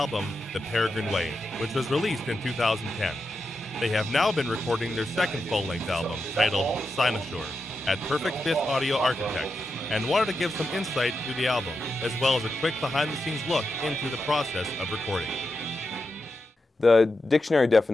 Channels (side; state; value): both; normal; correlation 0.88